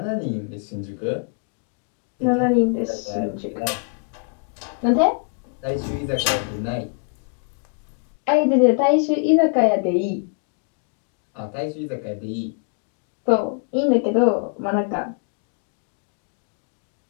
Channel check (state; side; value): quieter; right; 40.0 dB